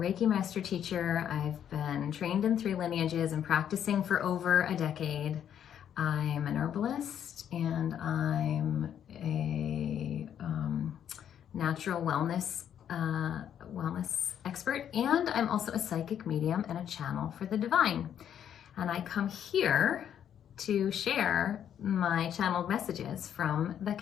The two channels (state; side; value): quieter; right; 9.4 dB